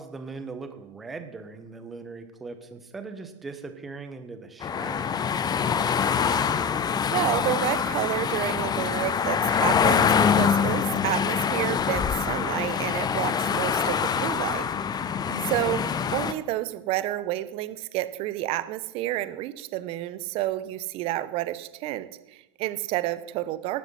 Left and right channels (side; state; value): both; normal; correlation 0.21